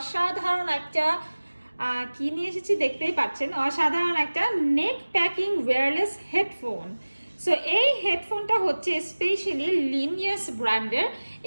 একটা কি নিয়ে এসেছি দেখতেই পাচ্ছেন, অসাধারণ একটা নেক প্যাকিং ওয়্যারলেস হেডফোন। সো এই হেডফোনটা হচ্ছে স্পেশালি লিনিয়াস ব্র্যান্ডের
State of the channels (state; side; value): inverted; both; correlation -1.00